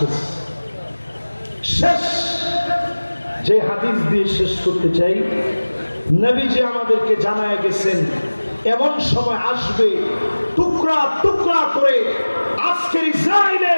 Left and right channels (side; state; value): both; inverted; correlation -1.00